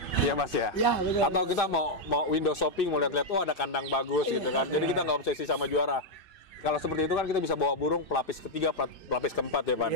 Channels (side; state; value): right; late; 2.6 ms